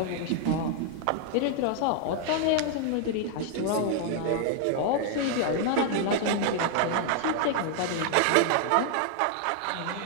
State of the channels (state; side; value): different; both; correlation 0.00